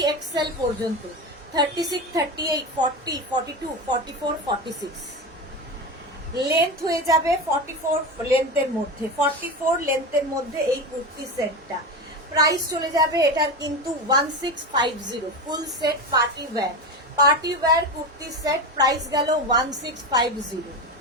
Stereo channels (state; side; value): normal; both; correlation 0.21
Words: পর্যন্ত। 36, 38, 40, 42, 44, 46 লেন্থ হয়ে যাবে 44 লেন্থের মধ্যে, 44 লেন্থের মধ্যে এই কুর্তি সেটটা। প্রাইস চলে যাবে এটার কিন্তু 1650, full set party wear kurti set. Price গেল 1650।